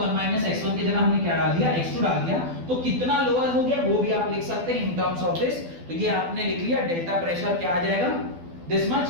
माइनस x1 की जगह हमने क्या डाल दिया, x2 डाल दिया। तो कितना लोअर हो गया वो भी आप लिख सकते हैं इन टर्म्स ऑफ दिस। तो ये आपने लिख लिया, डेल्टा प्रेशर क्या आ जाएगा, दिस मच।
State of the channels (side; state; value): left; late; 12 ms